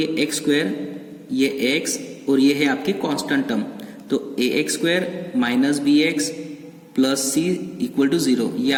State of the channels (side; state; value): both; identical; correlation 1.00